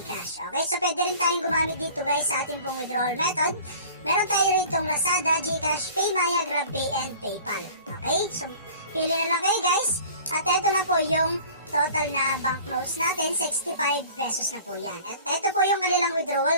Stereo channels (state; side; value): inverted; both; correlation -0.45